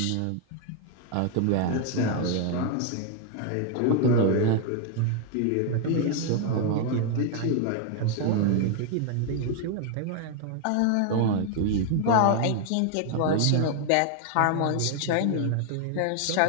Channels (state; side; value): different; both; correlation 0.00